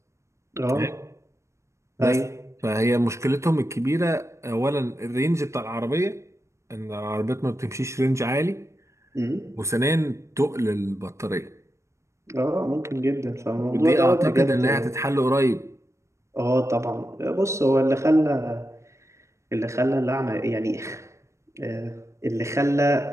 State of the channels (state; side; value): late; left; 0.14 ms